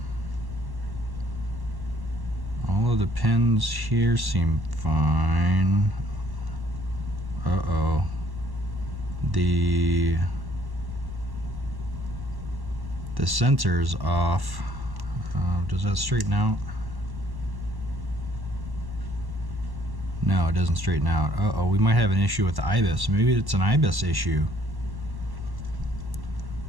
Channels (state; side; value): late; left; 1.1 ms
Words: All of the pins here seem fine. Uh-oh. The sensor's off. Does that straighten out? No, it doesn't straighten out. Uh-oh, we might have an issue with the IBIS. Maybe it's an IBIS issue.